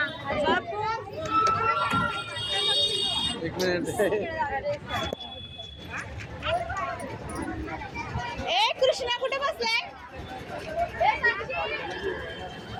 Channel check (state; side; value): identical; both; correlation 1.00